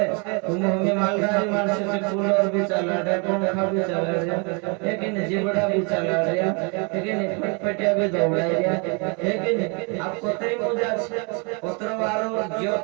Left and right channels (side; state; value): left; quieter; 33.6 dB